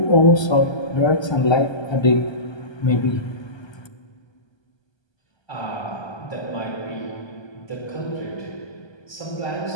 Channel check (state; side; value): late; right; 1.3 ms